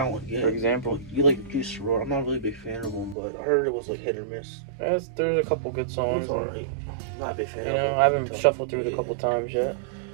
get it. For example. You like Juice WRLD. I'm not really a big fan of him, but I heard it was like hit or miss. There's a couple good songs. It's alright. I'm not a big fan of him. I haven't shuffled through it a couple times yet.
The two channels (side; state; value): left; drops out; at 3.2 s